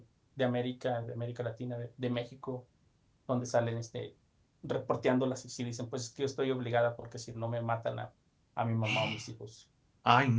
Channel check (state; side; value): identical; both; correlation 1.00